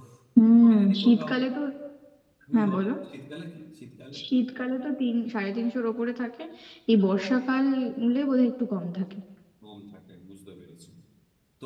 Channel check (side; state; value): both; identical; correlation 1.00